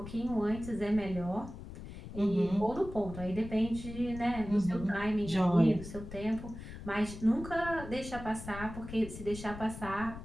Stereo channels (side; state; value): left; noise; rumble, 12 dB below the sound